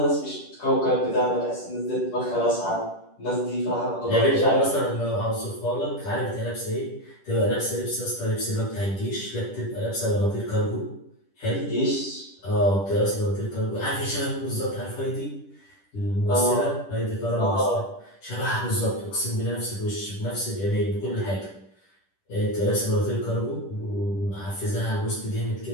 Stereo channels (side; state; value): right; late; 10 ms